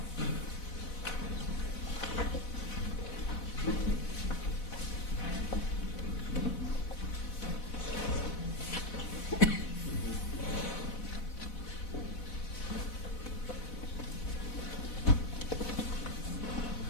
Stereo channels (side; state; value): right; late; 4.1 ms